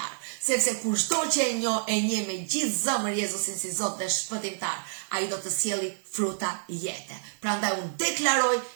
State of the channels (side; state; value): left; silent; digital silence